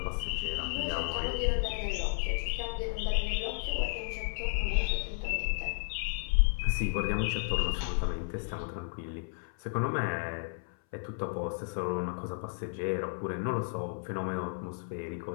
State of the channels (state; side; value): silent; right; 56 dB below the other